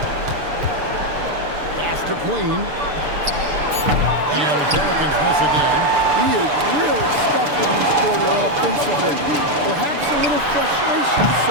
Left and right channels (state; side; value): late; left; 6.8 ms